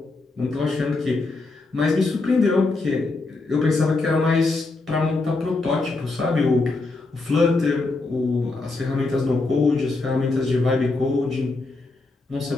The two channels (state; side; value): quieter; right; 3.4 dB